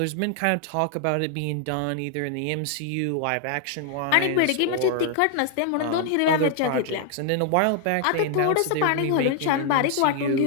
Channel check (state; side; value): different; both; correlation 0.00